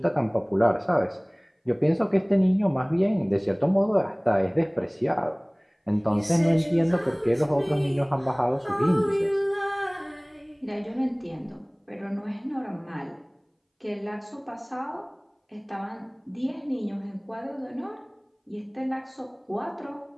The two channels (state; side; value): identical; both; correlation 1.00